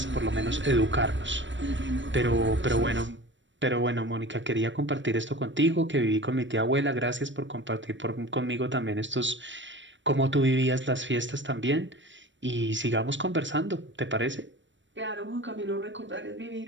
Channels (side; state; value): left; late; 0.54 ms